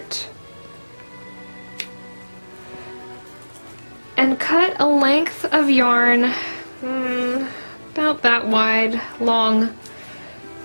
and cut a length of yarn about that wide, long.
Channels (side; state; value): both; inverted; correlation -1.00